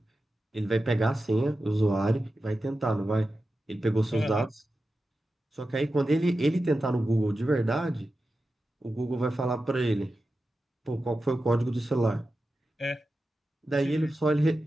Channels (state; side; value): normal; both; correlation 0.92